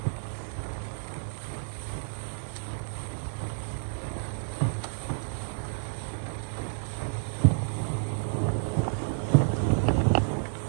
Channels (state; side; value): silent; left; digital silence